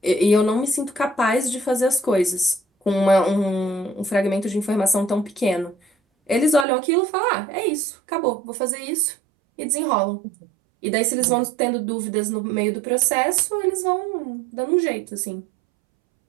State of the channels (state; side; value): drops out; left; at 6.7 s